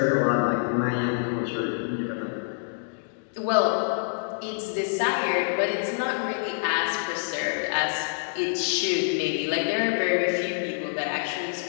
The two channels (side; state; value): right; silent; digital silence